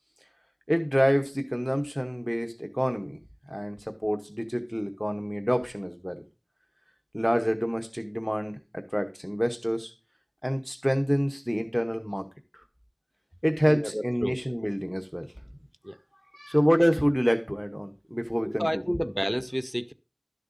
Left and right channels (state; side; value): identical; both; correlation 1.00